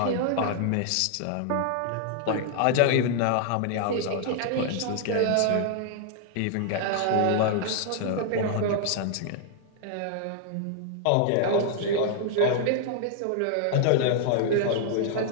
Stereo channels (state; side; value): different; both; correlation 0.00